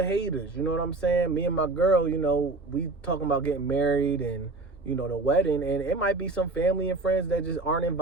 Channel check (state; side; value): quieter; left; 3.3 dB